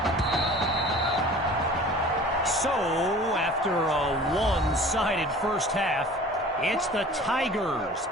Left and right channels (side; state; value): both; normal; correlation 0.44